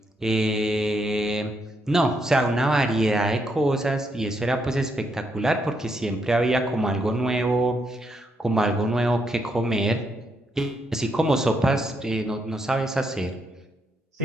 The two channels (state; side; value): normal; both; correlation 0.78